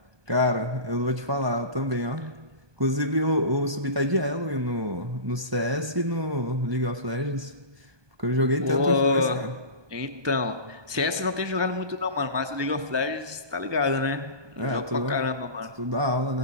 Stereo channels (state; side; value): late; left; 1.2 ms